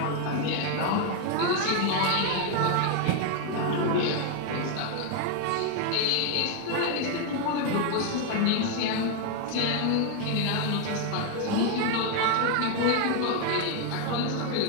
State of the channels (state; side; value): different; both; correlation 0.01